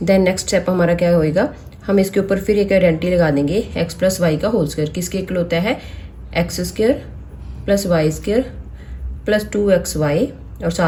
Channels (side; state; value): both; identical; correlation 1.00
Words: Then next step हमारा क्या होएगा, हम इसके ऊपर फिर एक आइडेंटिटी लगा देंगे एक्स प्लस वाई का होल स्क्वायर. किसके इक्वल होता है, x square plus y square plus 2x y और